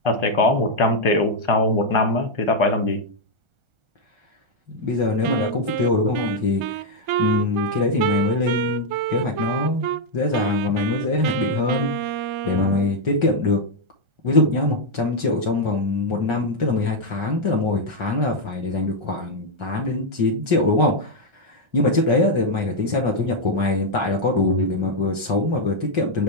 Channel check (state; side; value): late; left; 1.3 ms